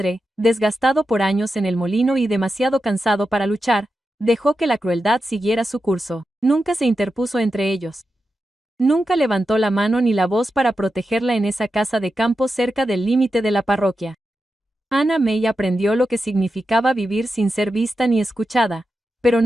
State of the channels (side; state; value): both; normal; correlation 0.89